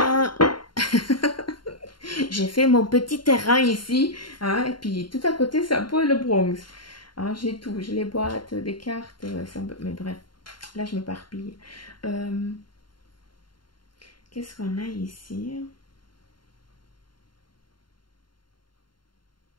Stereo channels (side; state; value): right; late; 0.72 ms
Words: J'ai fait mon petit terrain ici, hein, et puis tout à côté, c'est un peu le Bronx. Hein, j'ai tout, j'ai les boîtes, des cartes, mais bref, là je m'éparpille. Euh, Qu'est-ce qu'on a ici?